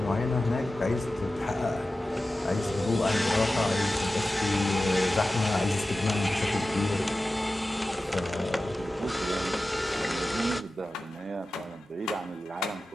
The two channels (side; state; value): both; normal; correlation 0.94